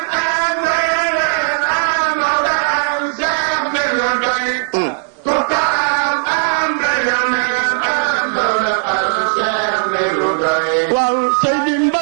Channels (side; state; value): left; silent; digital silence